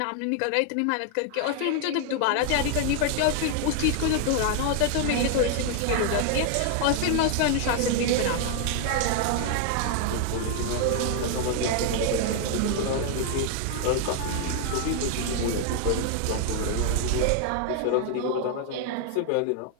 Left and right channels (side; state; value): both; different; correlation 0.00